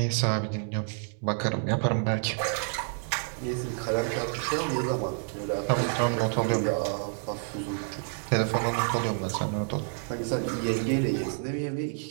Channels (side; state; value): left; silent; 59 dB below the other